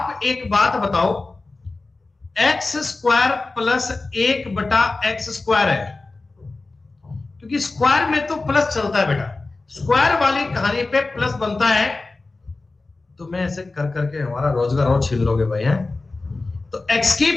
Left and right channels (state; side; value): quieter; right; 3.4 dB